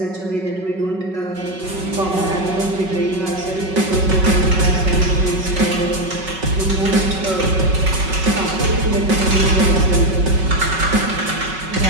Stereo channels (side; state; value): left; late; 5.3 ms